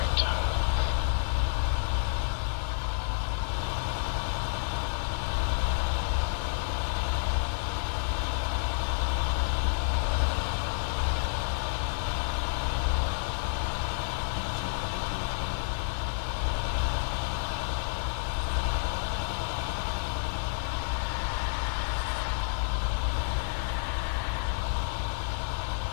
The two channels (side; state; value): right; silent; digital silence